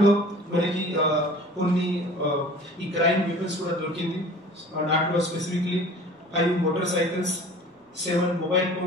మనకి కొన్ని ఈ క్రైమ్ వెపన్స్ కూడా దొరికింది. దాంట్లో specifically 5 motor cycles, 7 mobile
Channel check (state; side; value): normal; both; correlation 0.45